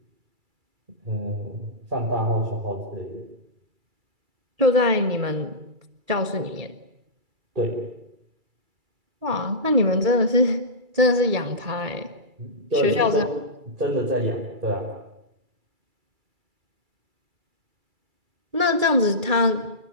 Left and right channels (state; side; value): late; left; 2.3 ms